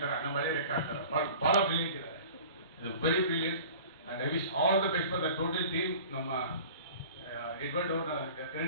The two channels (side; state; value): both; inverted; correlation -0.42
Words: ನಮ್ಮ ಹಳೆ ಲೆಕ್ಕ ಅಂತಾರೆ. ಭಾಳ ಬ್ರಿಲಿಯಂಟ್ ಇದ್ದಾರೆ. ಇದು very brilliant and I wish all the best for the total team. ನಮ್ಮ ಎಡ್ವರ್ಡ್ ಅವ್ರನ್ನ